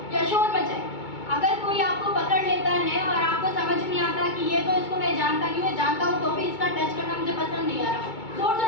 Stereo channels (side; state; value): right; late; 2.2 ms